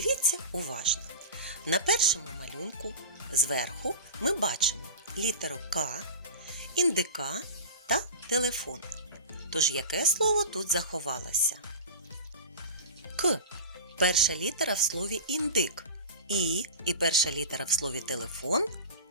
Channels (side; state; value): both; inverted; correlation -0.32